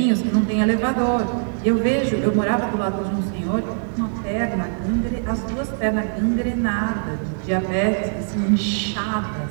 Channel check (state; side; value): silent; left; digital silence